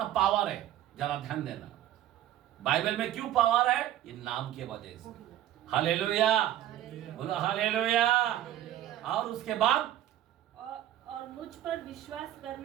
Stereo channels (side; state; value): left; quieter; 12.6 dB